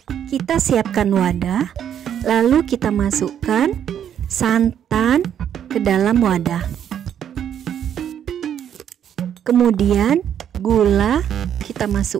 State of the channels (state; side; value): quieter; left; 9.4 dB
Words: Kita siapkan wadah, lalu kita masukkan santan ke dalam wadah. Kemudian gula kita